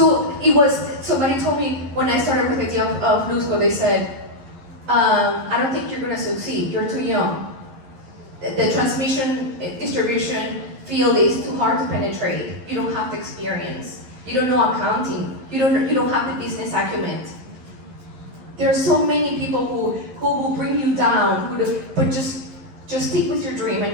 somebody told me when I started with the idea of Luzco, they said, I don't think you're gonna succeed, you're too young. The transmission, distribution field is too hard to penetrate. You don't have the experience. You don't know accounting. You don't have the business acumen. There are so many people who will bring you down, but just stick with your dream and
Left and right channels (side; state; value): left; late; 11 ms